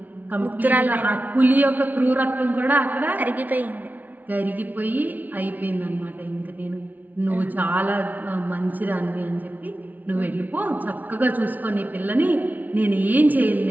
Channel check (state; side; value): late; left; 0.078 ms